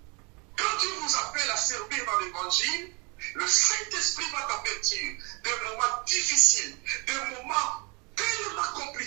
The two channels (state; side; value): quieter; left; 30.7 dB